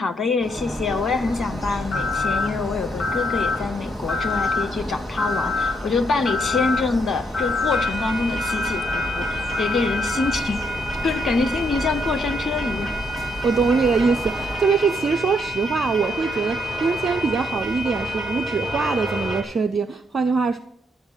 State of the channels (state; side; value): normal; both; correlation 0.74